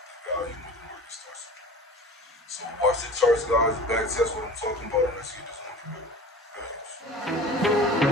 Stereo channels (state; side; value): normal; both; correlation 0.40